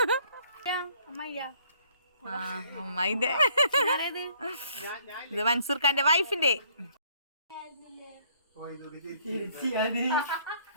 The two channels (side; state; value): both; inverted; correlation -0.63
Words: അമ്മായിന്റെ. ഇത് മൻസൂർ ഖാന്റെ വൈഫിന്റെ.